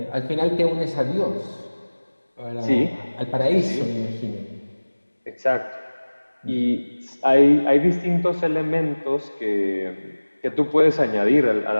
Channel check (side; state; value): both; inverted; correlation -1.00